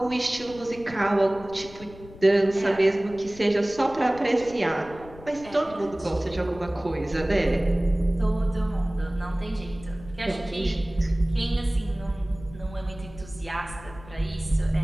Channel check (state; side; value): noise; left; rumble, 18 dB below the sound